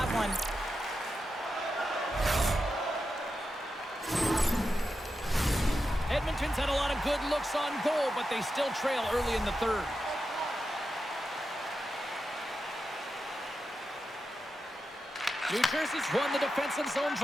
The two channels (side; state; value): both; normal; correlation 0.89